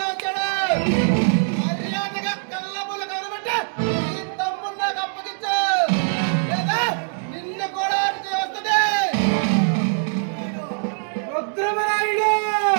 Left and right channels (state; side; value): silent; left; 64 dB below the other